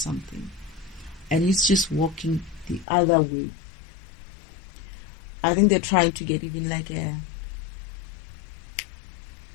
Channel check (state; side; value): drops out; right; at 2.9 s